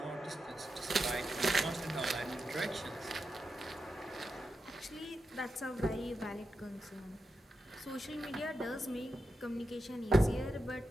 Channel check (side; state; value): both; normal; correlation 0.88